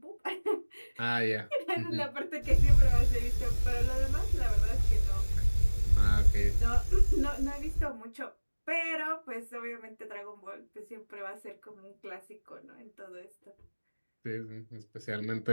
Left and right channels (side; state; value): both; inverted; correlation -1.00